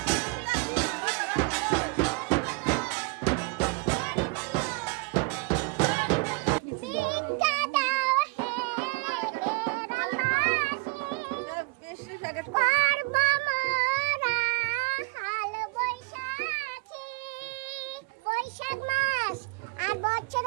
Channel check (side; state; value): left; quieter; 28.7 dB